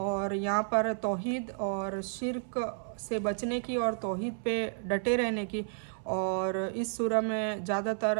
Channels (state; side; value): silent; left; 57 dB below the other